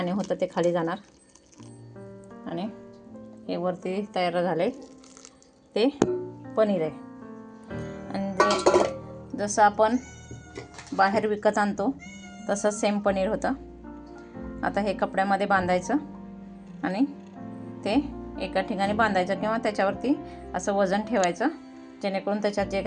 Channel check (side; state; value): both; identical; correlation 1.00